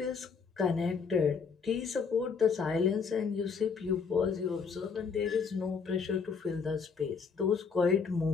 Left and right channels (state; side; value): quieter; right; 5.6 dB